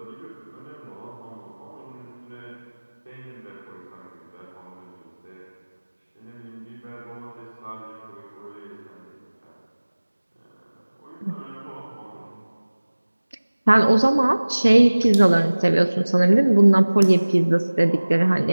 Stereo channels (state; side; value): inverted; both; correlation -1.00